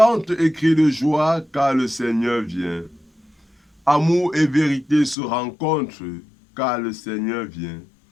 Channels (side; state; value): right; drops out; at 5.2 s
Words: et crie de joie, car le Seigneur vient. Amour et vérité se rencontrent, car le Seigneur vient.